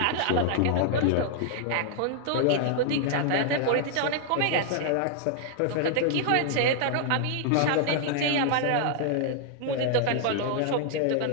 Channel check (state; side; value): different; both; correlation -0.01